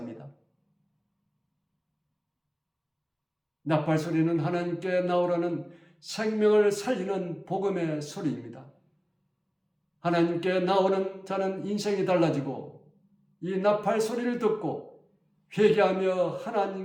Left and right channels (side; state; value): both; identical; correlation 1.00